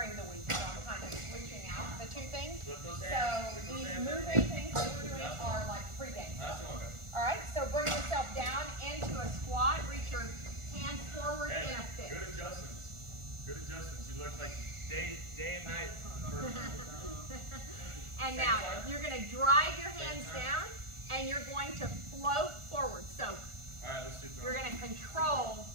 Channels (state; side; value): late; left; 1.4 ms